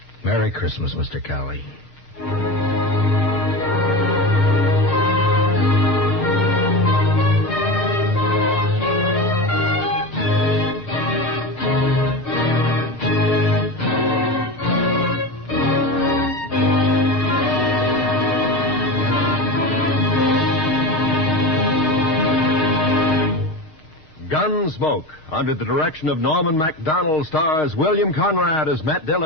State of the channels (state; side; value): late; right; 6.4 ms